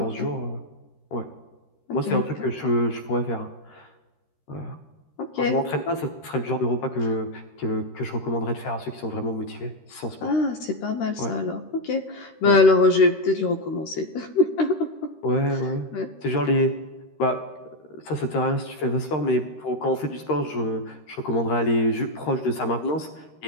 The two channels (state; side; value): late; right; 13 ms